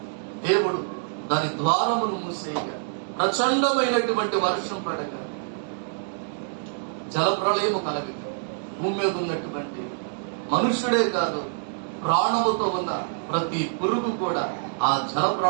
దేవుడు దాని ద్వారమును మూసేయగా ప్రచండమైనటువంటి వర్షం పడగా జలప్రళయము కలగక భూమి మీద ఉన్నటువంటి మనుష్యుడే కాదు, ప్రాణముతో ఉన్న ప్రతి పురుగు కూడా ఆ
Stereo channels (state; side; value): silent; left; digital silence